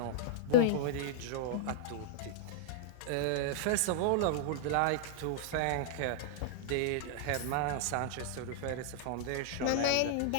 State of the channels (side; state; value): both; different; correlation -0.01